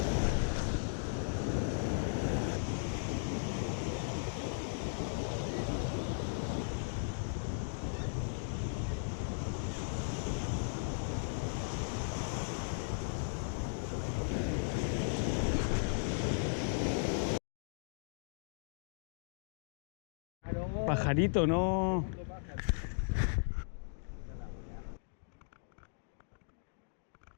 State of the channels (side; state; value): right; silent; digital silence